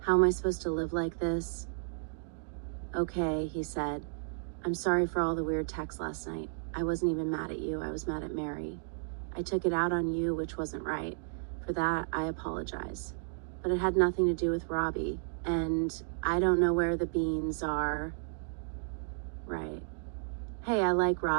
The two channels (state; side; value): silent; left; digital silence